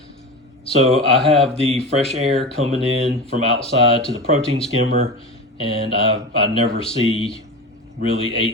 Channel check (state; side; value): normal; both; correlation 0.27